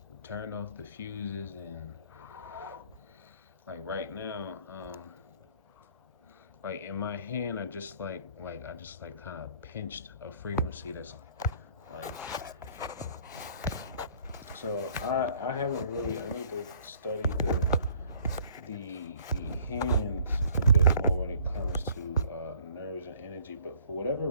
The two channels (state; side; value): inverted; both; correlation -0.57